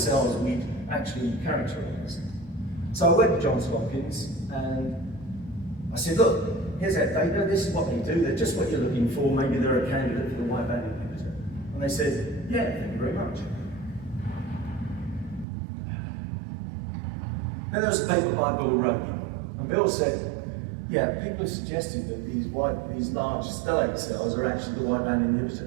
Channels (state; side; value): drops out; left; at 15.5 s